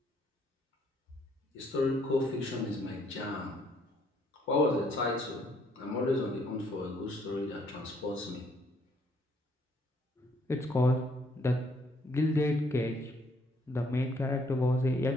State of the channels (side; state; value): both; normal; correlation 0.67